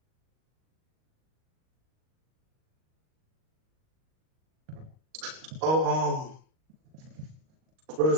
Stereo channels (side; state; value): left; late; 38 ms